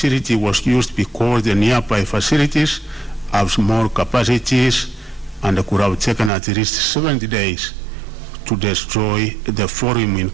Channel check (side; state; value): left; drops out; at 6.3 s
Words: was used because the nearby facilities have small capacities and could have taken at least 70 days to destroy the forum in